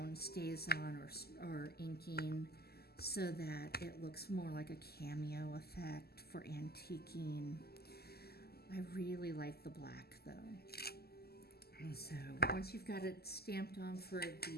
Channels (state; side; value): late; right; 0.46 ms